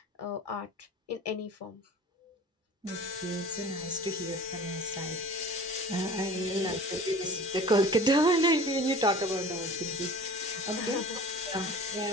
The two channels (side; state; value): both; normal; correlation 0.41